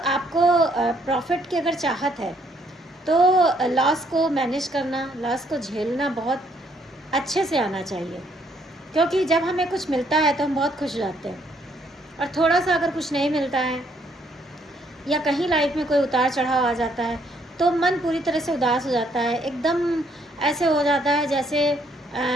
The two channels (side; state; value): both; normal; correlation 0.69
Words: प्रॉफिट की अगर चाहत है तो लॉस को मैनेज करना, लॉस को झेलना बहुत अच्छे से आना चाहिए। क्योंकि जब हमें कुछ मिलता है तो हम बहुत खुश हो जाते हैं, और थोड़ा सा अगर कुछ नहीं मिलता है या कहीं लाइफ में कोई उतार चढ़ाव आ जाता है तो मन पूरी तरह से उदास हो जाता है। एकदम ऐसे हो जाता है जैसे